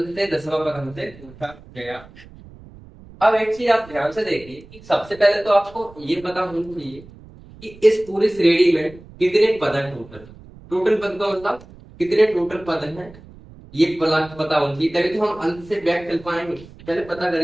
से 10वां पद हमसे पूछा गया। अब एक चीज आप ध्यान से देखिए कि सबसे पहले तो आपको ये पता होना चाहिए कि इस पूरी श्रेणी में कितने पद हैं टोटल। टोटल पद का मतलब कितने टोटल पद हैं, ये पता होना चाहिए, तभी तो हम अंत से बैक चल पाएंगे। पहले पता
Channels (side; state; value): right; noise; rumble, 21 dB below the sound